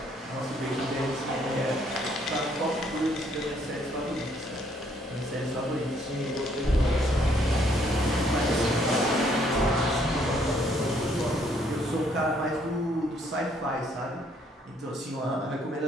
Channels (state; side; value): normal; both; correlation 0.67